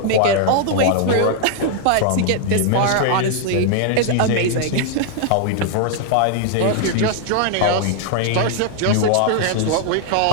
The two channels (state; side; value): different; both; correlation -0.01